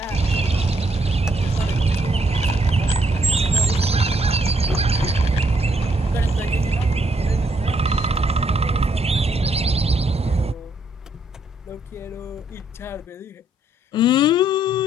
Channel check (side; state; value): both; normal; correlation 0.72